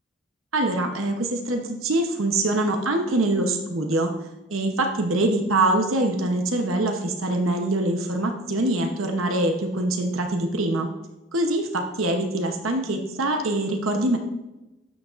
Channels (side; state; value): both; normal; correlation 0.38